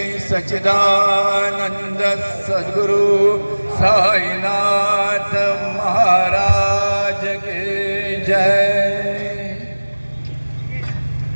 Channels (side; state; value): both; inverted; correlation -1.00